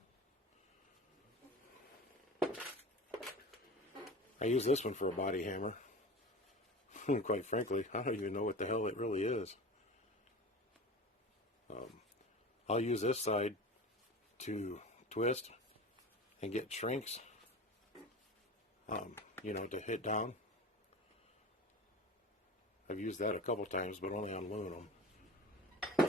I use this one for a body hammer. Quite frankly, I don't even know what the hell it really is. I'll use this side to twist and get shrinks, you know, to hit down. I've used that a couple times, but only on aluminum.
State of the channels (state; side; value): normal; both; correlation 0.34